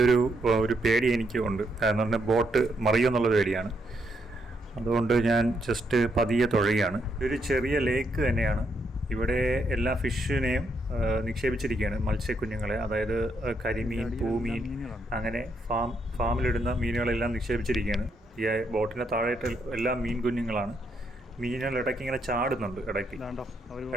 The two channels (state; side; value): normal; both; correlation 0.77